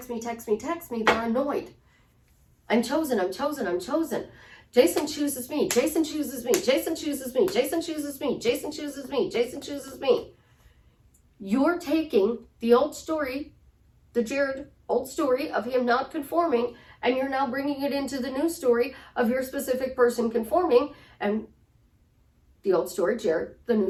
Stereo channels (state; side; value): identical; both; correlation 1.00